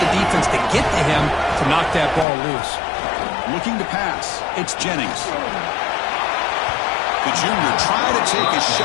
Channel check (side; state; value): right; drops out; at 2.2 s